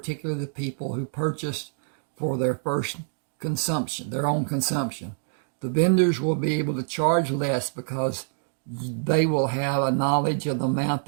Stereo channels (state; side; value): silent; left; digital silence